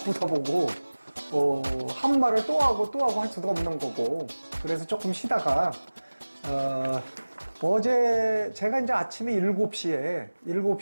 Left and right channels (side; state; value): both; inverted; correlation -1.00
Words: 보고 한 말을 또 하고 할 수도 없는 거고, 그래서 조금 쉬다가 어제 제가 이제 아침에